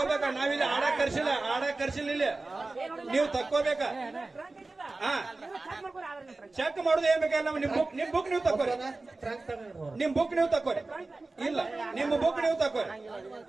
ನಾವಿಲ್ಲಿ ಆಡಕ್ ಕರ್ಸಿಲ್ಲ ಇಲ್ಲಿ. ನೀವು ತಕ್ಕೋಬೇಕ. ಚೆಕ್ ಮಾಡುದು ಏನ್ ಬೇಕಲ್ಲ. ನಿಮ್ ಬುಕ್ ನೀವು ತಕ್ಕೋರಿ. ನಿಮ್ ಬುಕ್ ನೀವು ತಕ್ಕೋರಿ. ಇಲ್ಲ, ನಿಮ್ಮ ಬುಕ್ ನೀವು ತಕ್ಕೋರಿ.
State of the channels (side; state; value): left; quieter; 3.3 dB